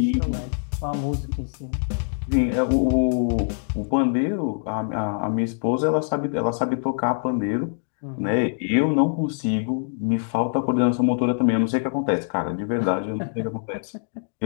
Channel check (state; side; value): silent; right; digital silence